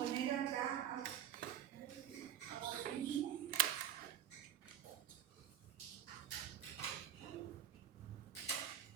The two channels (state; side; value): quieter; left; 10.5 dB